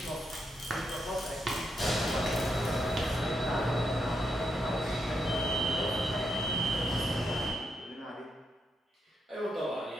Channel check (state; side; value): normal; both; correlation 0.81